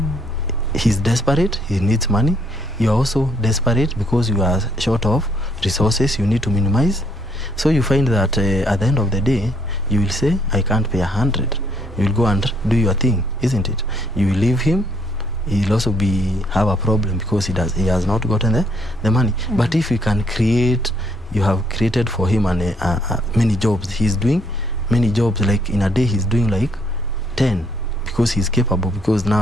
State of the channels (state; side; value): normal; both; correlation 0.69